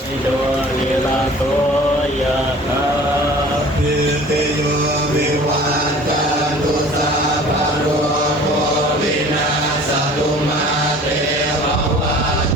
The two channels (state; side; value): normal; both; correlation 0.46